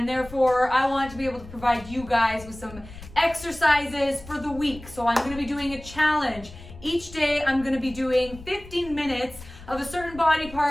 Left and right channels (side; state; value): left; noise; rumble, 17 dB below the sound